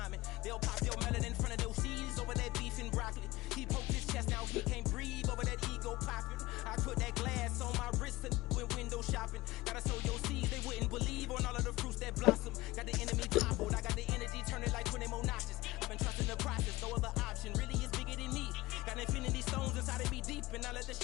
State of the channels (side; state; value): right; quieter; 19.6 dB